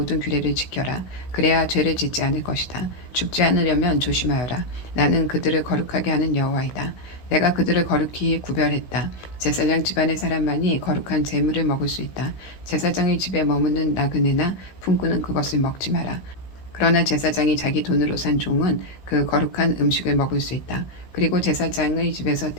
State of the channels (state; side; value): late; right; 16 ms